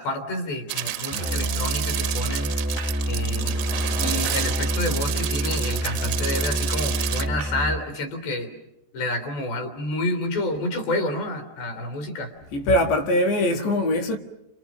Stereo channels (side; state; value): right; late; 13 ms